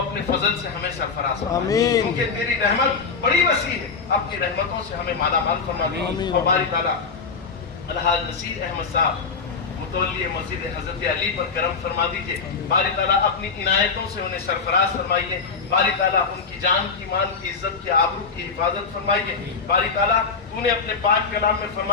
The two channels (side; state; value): right; quieter; 5.1 dB